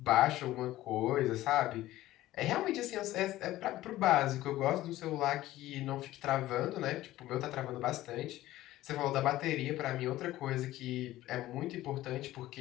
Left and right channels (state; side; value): quieter; right; 15.6 dB